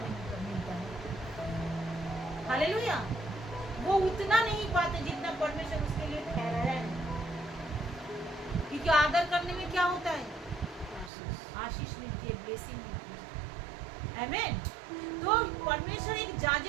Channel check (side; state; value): left; drops out; at 11.1 s